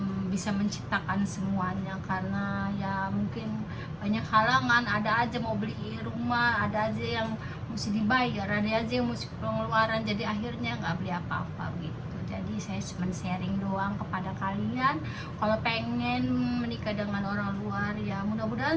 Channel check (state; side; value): identical; both; correlation 1.00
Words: bisa menciptakan semuanya, karena ya mungkin banyak halangan, ada aja mau beli rumah, ada aja yang mesti dibayar, ada aja yang mesti pengeluaran, jadi akhirnya nggak beli apa-apa gitu. Jadi saya cuma sharing doang kepada kalian, kalau pengen menikah dengan orang luar ya